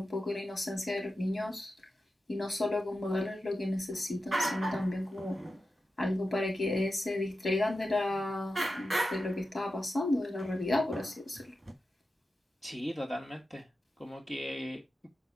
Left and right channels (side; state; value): both; normal; correlation 0.91